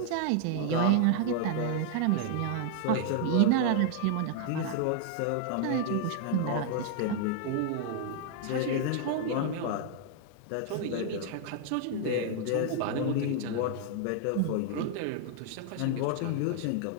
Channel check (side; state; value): both; different; correlation 0.00